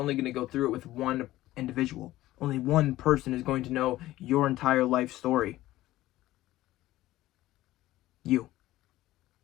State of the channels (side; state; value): right; quieter; 16.0 dB